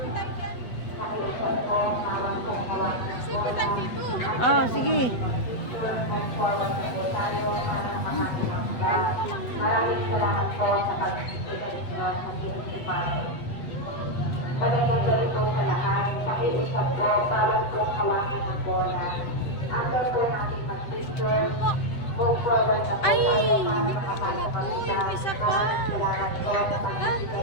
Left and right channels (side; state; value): right; late; 8.2 ms